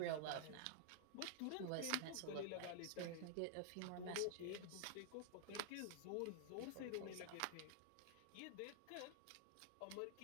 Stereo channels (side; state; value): both; different; correlation 0.00